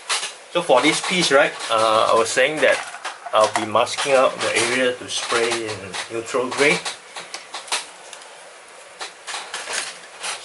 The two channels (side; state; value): both; identical; correlation 1.00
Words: So for this piece, right, I was saying that I'll be masking out the area to spray in neutral grey.